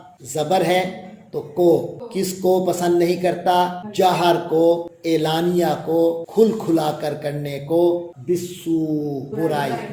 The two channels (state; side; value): identical; both; correlation 1.00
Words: زبر ہے تو کو کس کو پسند نہیں کرتا؟ جہر کو، اعلانیہ کو، کھل کھلا کر کرنے کو، بالسو برائی۔